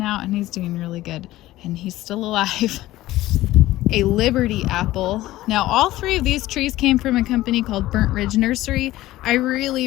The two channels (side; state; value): right; quieter; 16.2 dB